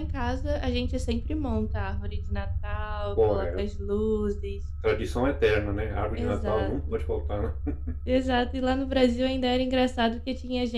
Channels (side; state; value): both; identical; correlation 1.00